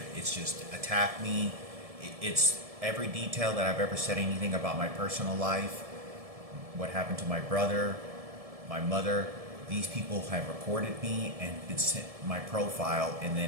It's just attack me. It's every detail that I've ever said anything about my personal life, what happened to my brother, my mother. These people have recorded me and it's my profile and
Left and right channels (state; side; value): late; left; 1.7 ms